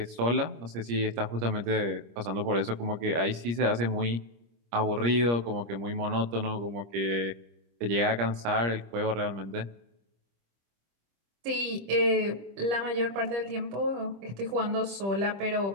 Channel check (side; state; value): left; late; 25 ms